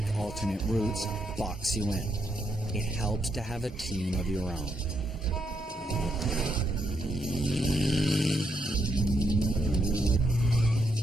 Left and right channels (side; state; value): both; normal; correlation 0.78